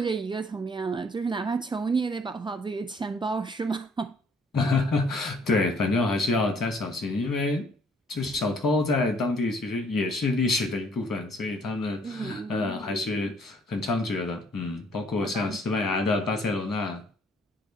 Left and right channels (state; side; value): normal; both; correlation 0.62